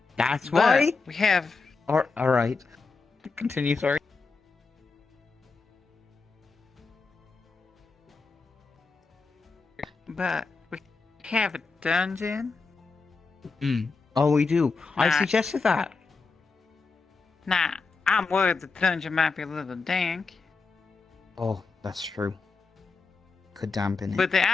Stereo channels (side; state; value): right; quieter; 4.3 dB